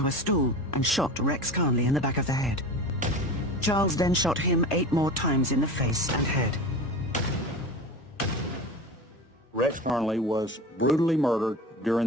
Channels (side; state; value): both; normal; correlation 0.31